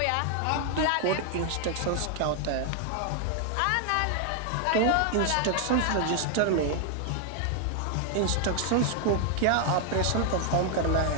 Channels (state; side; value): different; both; correlation 0.00